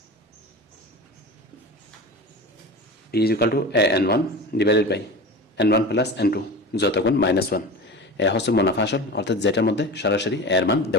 P is equal to n1 divided by n1 plus n2 যত গুণ -1। এ হচ্ছে মুনাফা আসল, অর্থাৎ যেটার মধ্যে সরাসরি এর মান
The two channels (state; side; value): normal; both; correlation 0.31